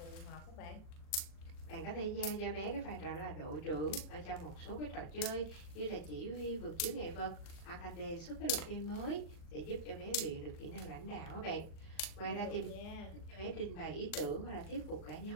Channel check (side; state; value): right; late; 39 ms